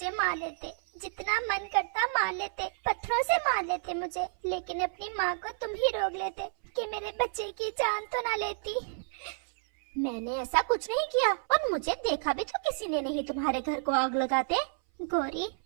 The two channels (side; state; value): left; silent; 57 dB below the other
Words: मार लेते, जितना मन करता मार लेते, पत्थरों से मार लेते मुझे, लेकिन अपनी माँ को तुम ही रोक लेते कि मेरे बच्चे की जान तो ना लेती। मैंने ऐसा कुछ नहीं किया और मुझे देखा भी तो किसी ने नहीं तुम्हारे घर को आग लगाते। गौरी,